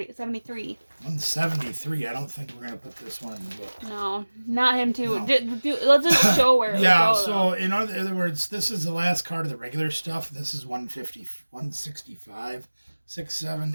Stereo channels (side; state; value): both; inverted; correlation -1.00